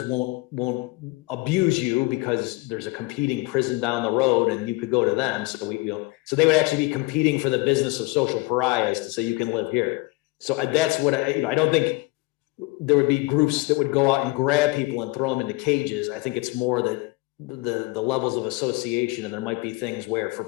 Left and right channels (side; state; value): right; quieter; 23.3 dB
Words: won't abuse you because there's a competing prison down the road and you could go to them. So so they would actually be competing for the business of social pariahs to say you can live here. So that's what I don't think there would be groups that would go out and grab people and throw them into cages. I think it's more that the levels of association, and there might be things where for